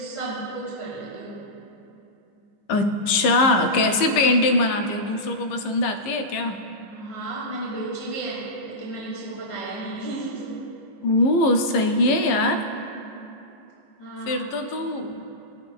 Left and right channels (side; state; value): right; late; 15 ms